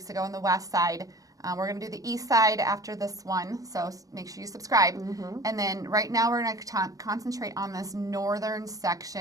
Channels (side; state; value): left; late; 0.17 ms